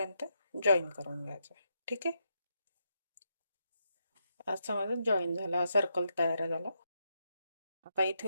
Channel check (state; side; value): inverted; both; correlation -0.81